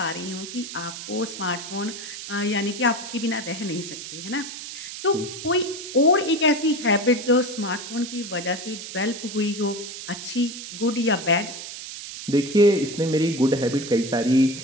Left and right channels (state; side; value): noise; right; hiss, 10 dB below the sound